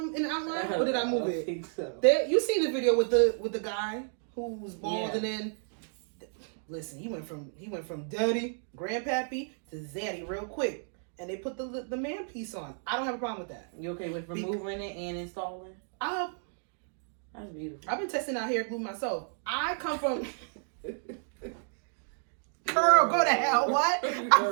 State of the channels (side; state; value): left; silent; digital silence